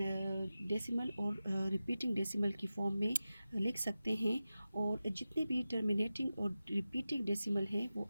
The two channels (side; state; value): both; inverted; correlation -0.94